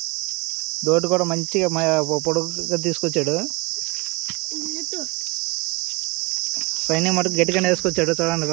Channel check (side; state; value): left; quieter; 26.0 dB